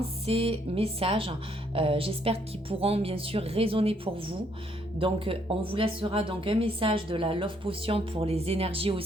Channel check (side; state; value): both; normal; correlation 0.69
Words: ces messages, j'espère qu'ils pourront bien sûr résonner pour vous. Donc on vous laissera donc un message de la Love Potion pour les énergies